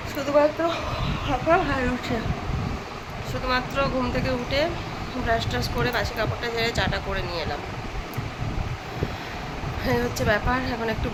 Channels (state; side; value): identical; both; correlation 1.00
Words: শুধুমাত্র হাঁপা হাই উঠে। শুধুমাত্র ঘুম থেকে উঠে ব্রাশ ট্রাশ করে বাসি কাপড়টা ঝেড়ে চাটা করে নিয়ে এলাম। এই হচ্ছে ব্যাপার। এখন একটু